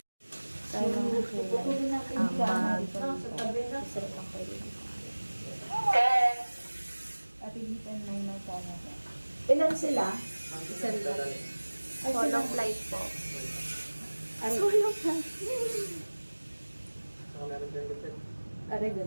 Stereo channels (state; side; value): inverted; both; correlation -1.00